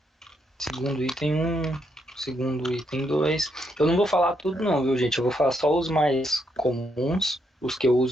segundo item 1, segundo item 2. Eu não vou falar tudo não, viu, gente? Eu vou falar só os mais comuns, os que eu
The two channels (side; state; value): both; normal; correlation 0.77